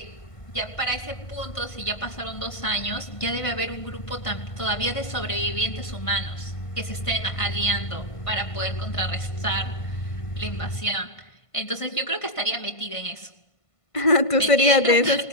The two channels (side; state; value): right; late; 1.5 ms